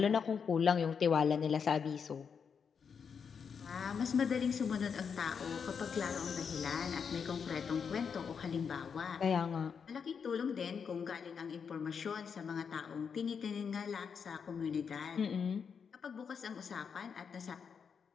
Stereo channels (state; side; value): quieter; right; 6.5 dB